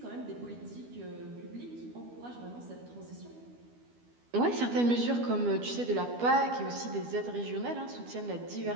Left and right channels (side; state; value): left; late; 12 ms